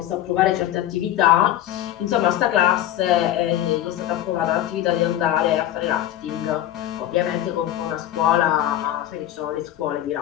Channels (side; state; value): right; quieter; 12.6 dB